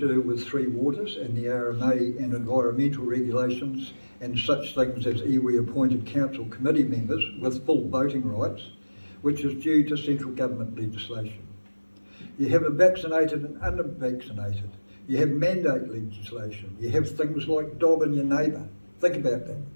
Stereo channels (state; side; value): inverted; both; correlation -1.00